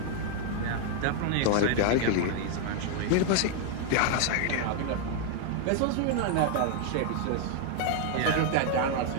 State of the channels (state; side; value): different; both; correlation 0.00